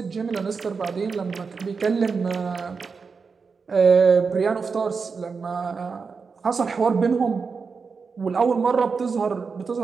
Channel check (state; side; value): quieter; left; 5.1 dB